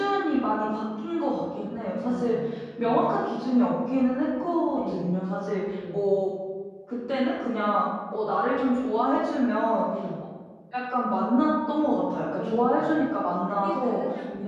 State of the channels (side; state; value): both; identical; correlation 1.00